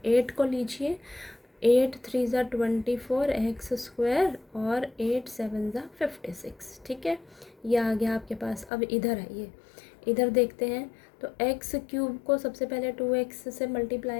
8 को लीजिए, 8 3 ज़ा 24 एक्स स्क्वायर और 8 7 ज़ा 56। ठीक है, ये आ गया आपके पास। अब इधर आइए, इधर देखते हैं। तो एक्स क्यूब को सबसे पहले 2x से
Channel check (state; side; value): drops out; right; at 8.7 s